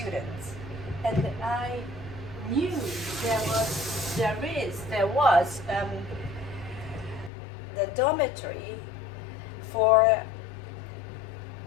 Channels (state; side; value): drops out; right; at 7.3 s